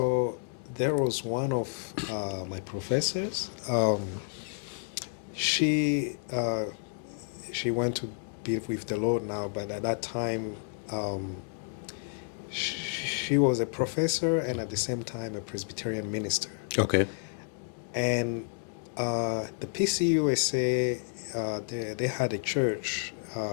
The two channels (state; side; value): silent; right; digital silence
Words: there was one of my professors. She went to be with the Lord now, but at that time she was a professor and at the same time a Presbyterian minister. Okay. And the pcusa, they had a church